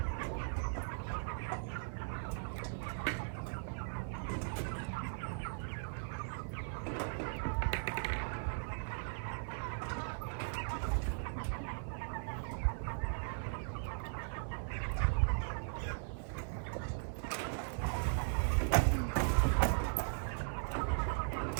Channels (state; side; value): silent; left; 52 dB below the other